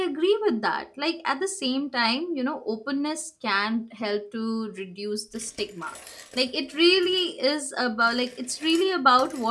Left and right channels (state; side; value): identical; both; correlation 1.00